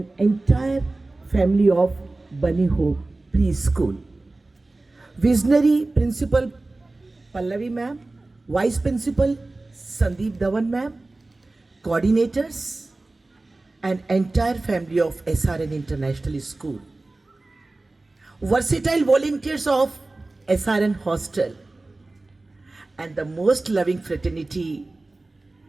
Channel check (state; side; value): quieter; left; 3.1 dB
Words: entire family of Bunny Hope Preschool. Visionary Principal Pallavi ma'am, Vice Principal Sandeep Dhawan ma'am, coordinators, and entire family of SRN International School. Versatile volunteers of SRN Hostel, and the most loving fraternity,